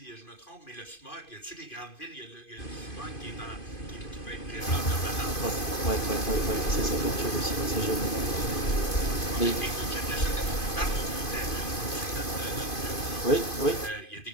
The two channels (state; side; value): late; right; 2.5 ms